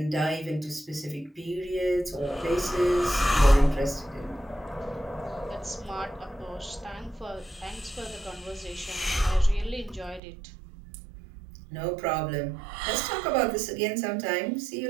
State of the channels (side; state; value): left; drops out; at 10.2 s